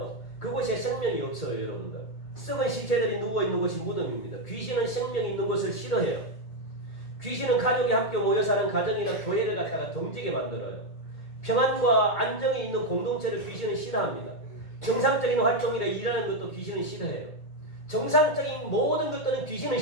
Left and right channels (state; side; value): late; right; 2.1 ms